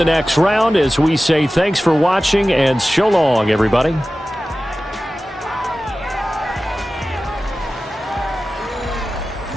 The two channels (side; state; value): both; normal; correlation 0.95